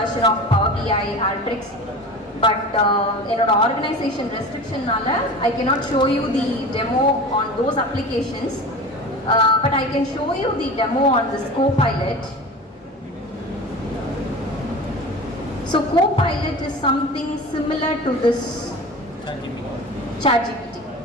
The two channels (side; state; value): both; normal; correlation 0.34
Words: of Power BI, Alteryx, but என்னோட ஆர்கனைசேஷன் ரெஸ்ட்ரிக்ஷன்னால I cannot show you the demo on those applications. But I can show you the demo on this Copilot. So Copilot is something similar to this ChatGPT.